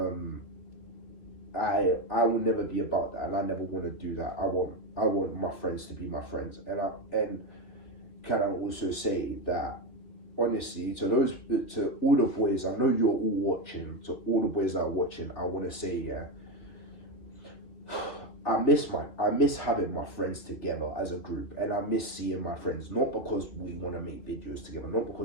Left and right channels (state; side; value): late; right; 3.1 ms